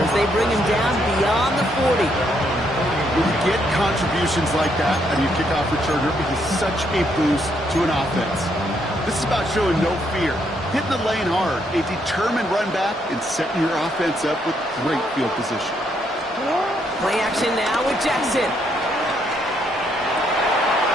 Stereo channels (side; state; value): both; normal; correlation 0.74